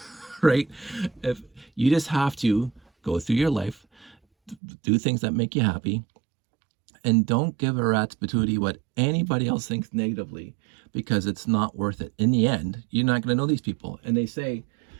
Right? If you just have to go through your life, do things that make you happy, and don't give a rat's patootie what anybody else thinks negatively, because it's not worth it. In the end, you're not going to know these people. And they say,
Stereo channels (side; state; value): left; drops out; at 4.5 s